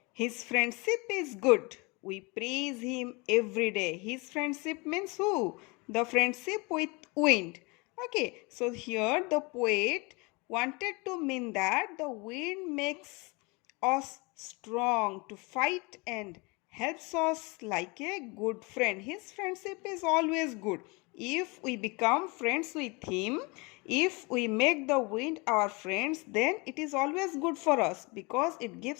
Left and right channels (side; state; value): right; quieter; 27.8 dB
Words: His friendship is good. We praise him every day. His friendship means who? The friendship with wind. Okay, so here the poet wanted to mean that the wind makes us strong to fight and helps us like a good friend. His friendship is always good. If we become friends with him, if we make the wind our friends, then it is always good for us because it